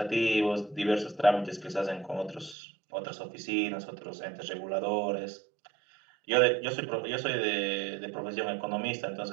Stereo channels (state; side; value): drops out; left; at 2.6 s